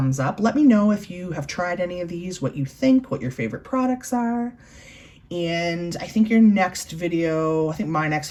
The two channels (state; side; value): identical; both; correlation 1.00